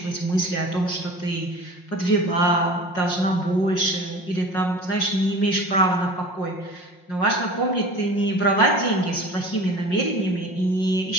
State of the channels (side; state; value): right; late; 5.5 ms